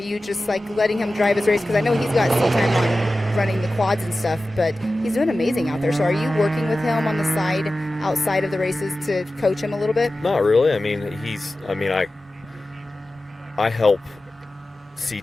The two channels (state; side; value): normal; both; correlation 0.95